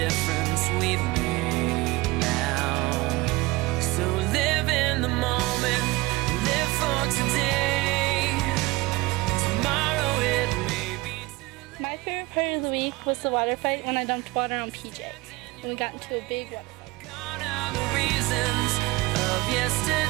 we've made now? So live in the moment, live for today. Tomorrow it may be too late. My favorite part of the week was the water fight when I dumped water on PJ and we got into a big water fight. Gone are the reasons of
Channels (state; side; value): quieter; left; 21.3 dB